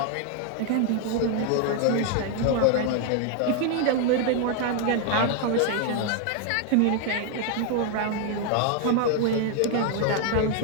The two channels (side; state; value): both; different; correlation 0.00